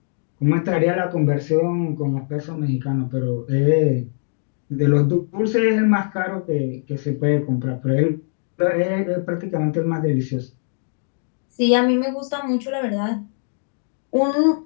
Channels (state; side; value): silent; right; digital silence